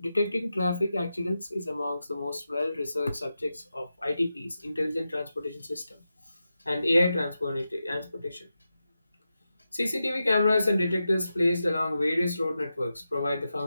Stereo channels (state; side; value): inverted; both; correlation -0.90